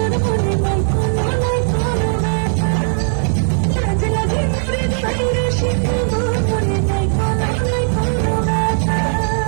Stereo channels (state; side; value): silent; left; digital silence